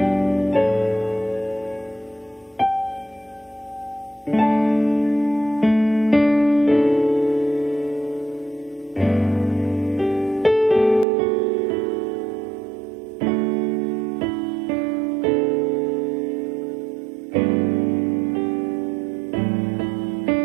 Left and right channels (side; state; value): left; drops out; at 11.1 s